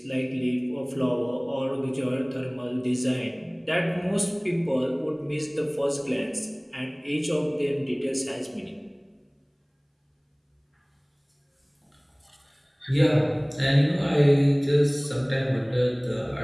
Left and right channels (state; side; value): identical; both; correlation 1.00